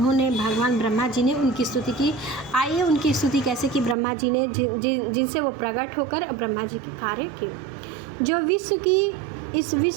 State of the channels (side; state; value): left; drops out; at 4.0 s